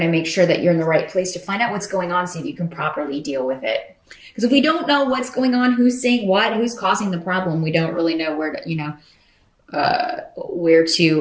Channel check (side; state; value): both; identical; correlation 1.00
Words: to make sure that you're in the right place to find out what's going on, so you can properly deal with it. Because if we don't know what's going on, who's saying what, who's causing the problem, we don't really know where